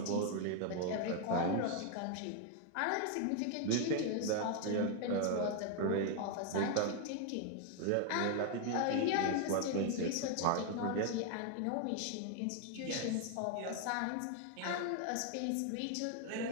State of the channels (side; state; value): both; different; correlation 0.01